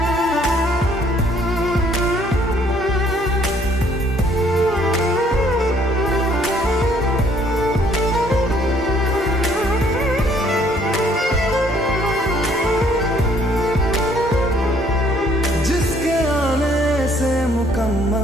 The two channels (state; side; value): normal; both; correlation 0.63